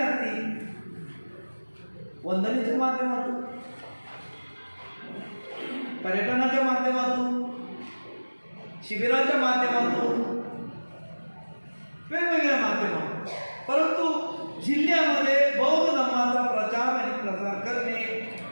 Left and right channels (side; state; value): both; inverted; correlation -1.00